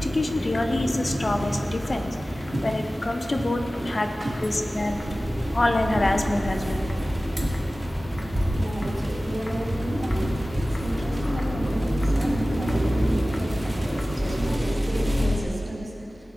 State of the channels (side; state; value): both; normal; correlation 0.96